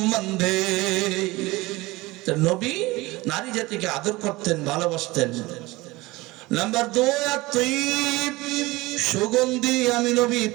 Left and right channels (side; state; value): left; quieter; 21.1 dB